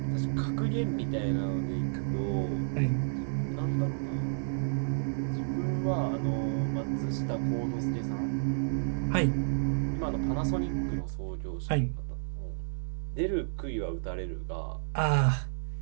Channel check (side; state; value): left; silent; 57 dB below the other